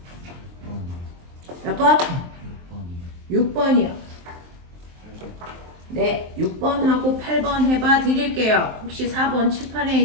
몇 번? 6번이요. 네, 6번하고 8번 해봐 드릴게요. 혹시 4번 칠판에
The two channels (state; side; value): late; left; 23 ms